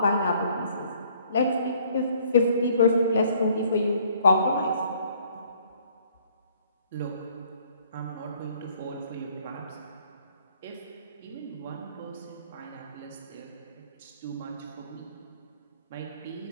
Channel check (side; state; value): both; inverted; correlation -0.61